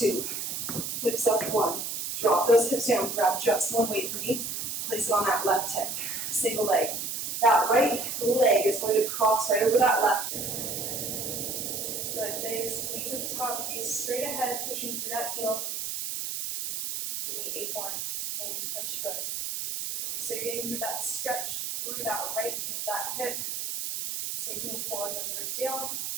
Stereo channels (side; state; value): right; noise; hiss, 4 dB below the sound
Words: Hips up 1. Drop those hips down. Grab just 1 weight for me. Place it on that left hip. Single leg. That right leg is going to cross right over that left. Good. Big squeeze at the top. Gaze straight ahead, pushing through that heel. Give me 8 more. And push. Good. So you're getting through that stretch through that right, that hip. Same thing, pulling those ribs down.